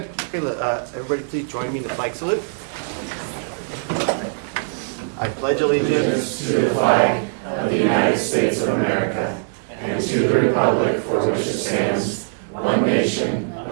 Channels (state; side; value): silent; left; digital silence